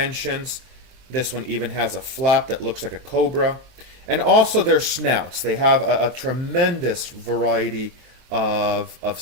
This one even has a flap that looks like a cobra. And also their snouts. They have a tremendous variety of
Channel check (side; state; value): left; late; 23 ms